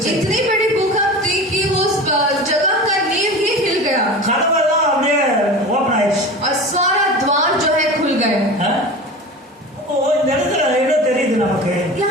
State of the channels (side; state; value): both; normal; correlation 0.32